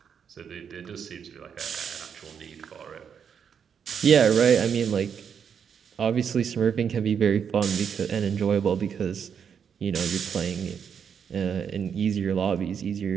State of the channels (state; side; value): quieter; left; 7.3 dB